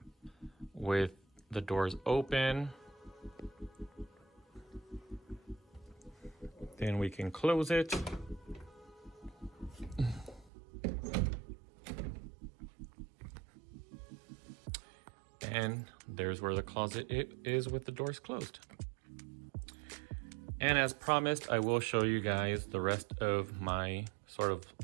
with the doors open. Then we can close it. And there's where the closet is with the doors closed. And as promised, I will show you guys the rest of my sort of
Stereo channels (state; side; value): drops out; left; at 10.5 s